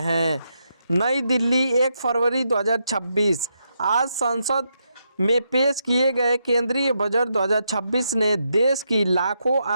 हैं। नई दिल्ली 1 फरवरी 2026। आज संसद में पेश किए गए केंद्रीय बजट 2026 ने देश की लाखों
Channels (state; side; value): inverted; both; correlation -0.81